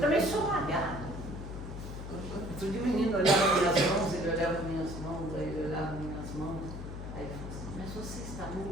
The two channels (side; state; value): left; noise; hum, 9 dB below the sound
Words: sou malhado. Outro dia o menino olhava minhas mãos, ele olhava minhas mãos, aí ele olhava minhas mãos, aí ele falou assim, mas você está